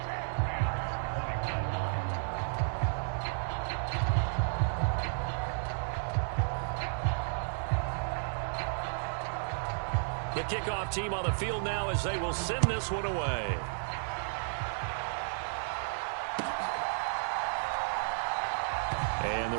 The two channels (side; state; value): left; silent; 56 dB below the other